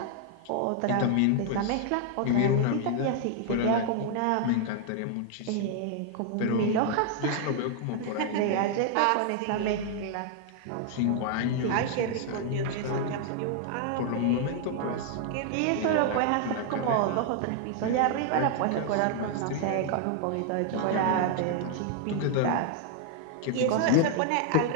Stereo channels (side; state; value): both; different; correlation 0.00